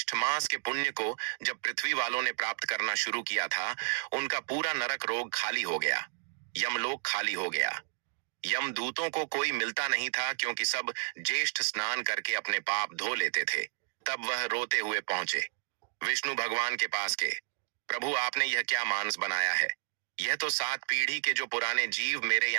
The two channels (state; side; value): silent; left; digital silence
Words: मास के पुण्य को जब पृथ्वी वालों ने प्राप्त करना शुरू किया था उनका पूरा नरक रोग खाली हो गया, यमलोक खाली हो गया। यमदूतों को कोई मिलता नहीं था क्योंकि सब ज्येष्ठ स्नान करके अपने पाप धो लेते थे। तब वह रोते हुए पहुंचे विष्णु भगवान के पास के, प्रभु आपने यह क्या मानस बनाया है? यह तो 7 पीढ़ी के जो पुराने जीव मेरे